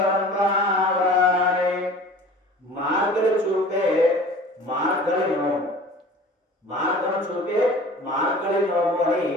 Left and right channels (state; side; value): normal; both; correlation 0.43